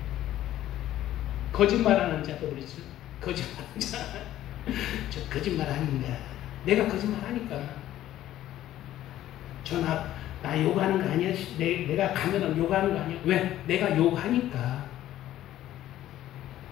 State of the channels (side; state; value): right; quieter; 13.2 dB